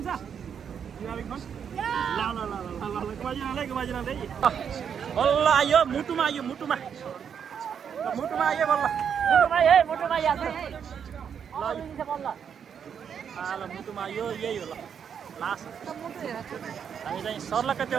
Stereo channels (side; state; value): left; quieter; 7.6 dB